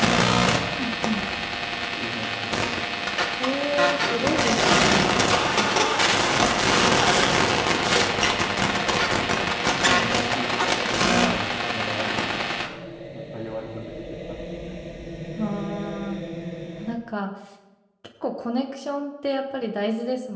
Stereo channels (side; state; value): both; identical; correlation 1.00